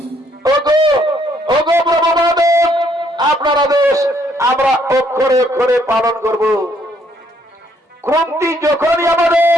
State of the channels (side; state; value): both; normal; correlation 0.68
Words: ওগো ওগো প্রভু মহাদেব, আপনার আদেশ আমরা অক্ষরে অক্ষরে পালন করব। কুন্তি যখনই আমাদের